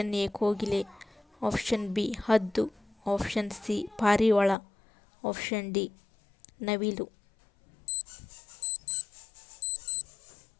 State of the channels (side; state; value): right; drops out; at 4.5 s